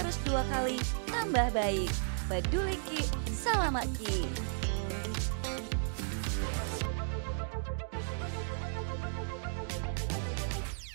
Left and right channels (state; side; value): silent; left; digital silence